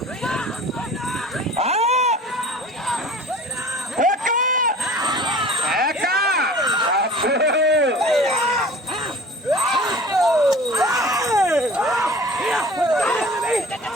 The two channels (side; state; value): both; normal; correlation 0.43